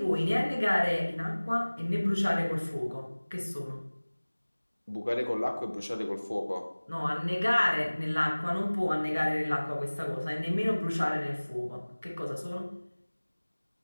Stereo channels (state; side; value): inverted; both; correlation -1.00